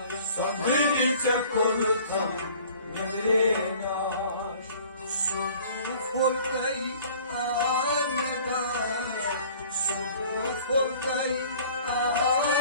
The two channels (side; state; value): both; inverted; correlation -0.50